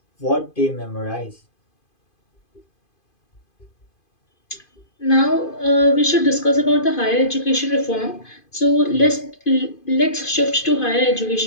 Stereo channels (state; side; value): late; right; 2.5 ms